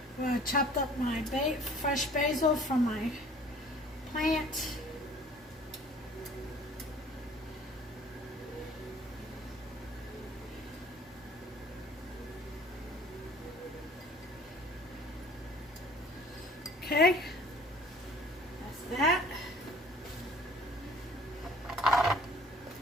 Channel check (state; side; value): normal; both; correlation 0.51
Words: I chopped up my fresh basil from my plant. Okay, that's that.